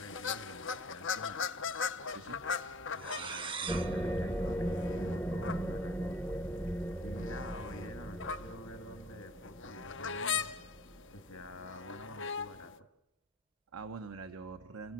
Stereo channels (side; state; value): both; normal; correlation 0.46